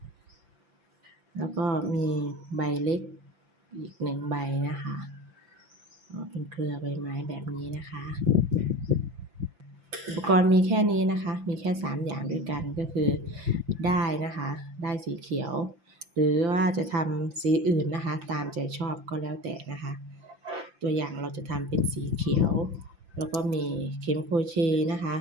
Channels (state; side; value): late; left; 5.9 ms